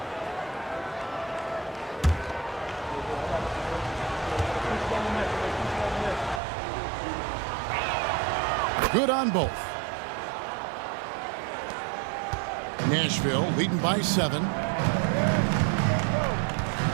Good on both. Nashville leading by 7.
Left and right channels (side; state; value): left; drops out; at 6.4 s